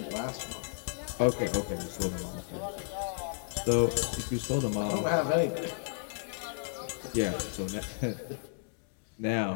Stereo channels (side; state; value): right; silent; digital silence